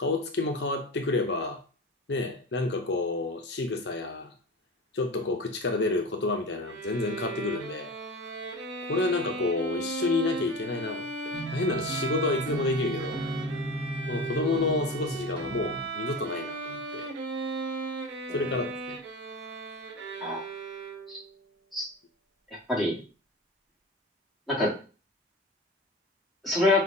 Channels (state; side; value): normal; both; correlation 0.30